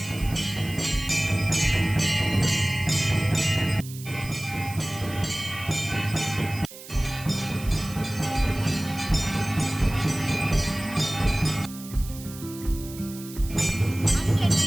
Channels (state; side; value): noise; right; hiss, 15 dB below the sound